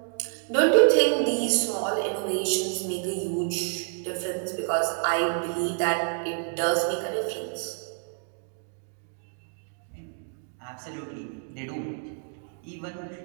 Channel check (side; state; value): left; silent; digital silence